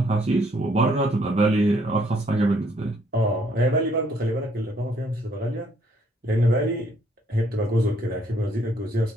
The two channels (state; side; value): normal; both; correlation 0.67